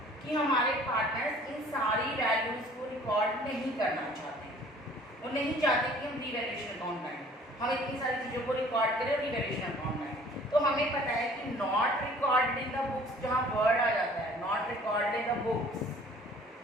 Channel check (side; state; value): both; normal; correlation 0.52